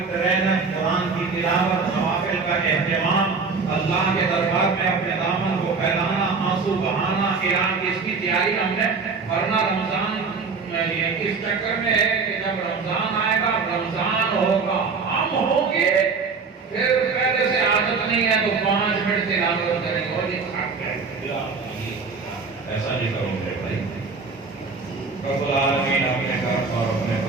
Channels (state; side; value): quieter; left; 4.7 dB